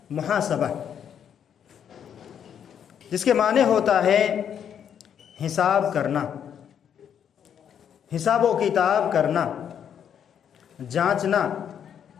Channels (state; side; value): quieter; right; 8.6 dB